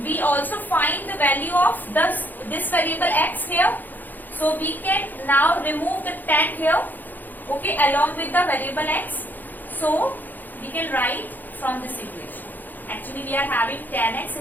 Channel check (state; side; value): late; right; 0.086 ms